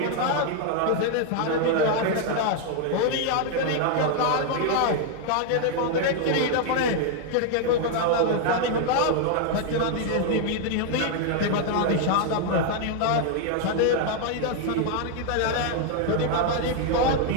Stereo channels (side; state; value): both; different; correlation 0.00